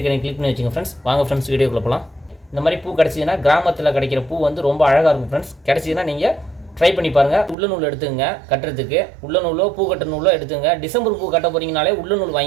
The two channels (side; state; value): left; drops out; at 7.6 s